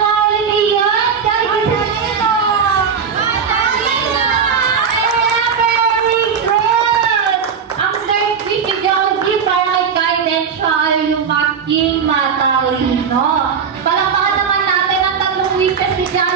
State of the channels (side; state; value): left; quieter; 6.6 dB